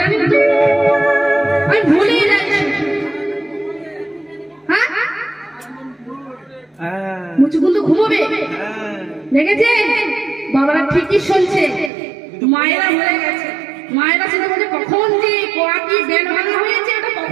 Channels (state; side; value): drops out; left; at 11.9 s